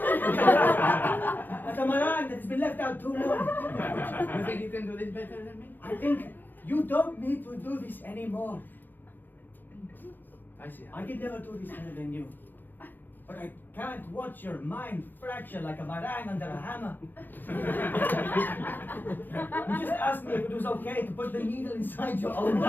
a meringue that has been left out too long. You think you can do this better than me? I think you don't need to do this anymore. I see. I could never do this better than you. But I can't watch your mind fracture like a meringue under a hammer. You just asked me if it was okay to put the needle inside your own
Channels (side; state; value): right; late; 0.092 ms